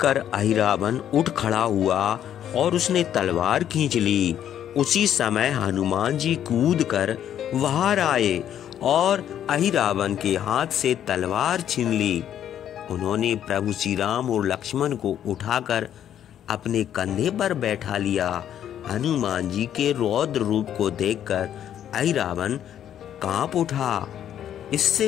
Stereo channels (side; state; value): right; quieter; 10.2 dB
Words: कर अहिरावण उठ खड़ा हुआ और उसने तलवार खींच ली। उसी समय हनुमान जी कूद कर बाहर आए और अहिरावण के हाथ से तलवार छीन ली। उन्होंने प्रभु श्री राम और लक्ष्मण को उठाकर अपने कंधे पर बैठा लिया। हनुमान जी के रौद्र रूप को देखकर अहिरावण कांप उठा।